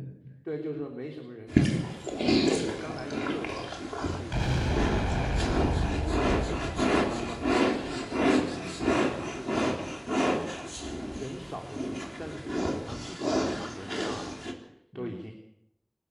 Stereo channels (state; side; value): identical; both; correlation 1.00